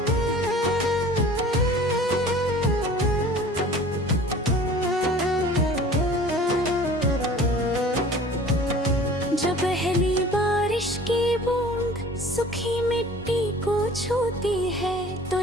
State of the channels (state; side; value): normal; both; correlation 0.46